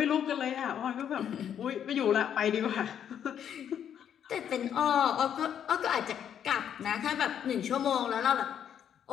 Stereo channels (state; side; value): quieter; right; 9.1 dB